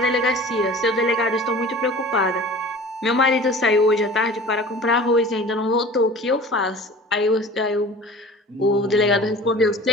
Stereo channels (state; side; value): normal; both; correlation 0.41